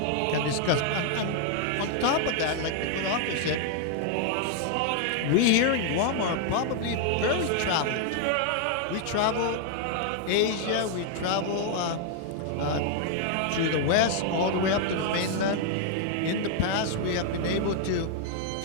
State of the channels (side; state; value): both; different; correlation 0.00